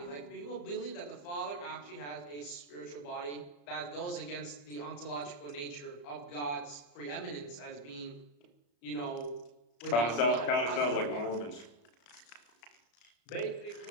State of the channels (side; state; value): right; late; 34 ms